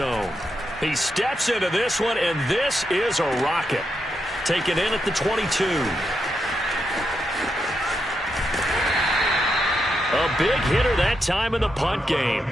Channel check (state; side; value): normal; both; correlation 0.84